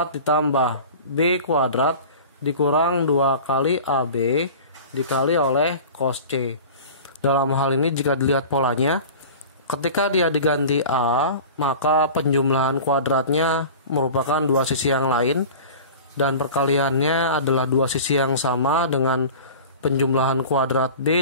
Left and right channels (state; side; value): inverted; both; correlation -0.38